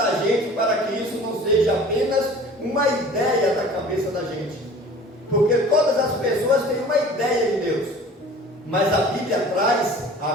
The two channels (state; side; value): normal; both; correlation 0.45